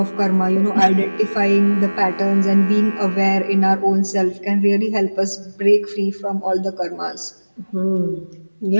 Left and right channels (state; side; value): inverted; both; correlation -1.00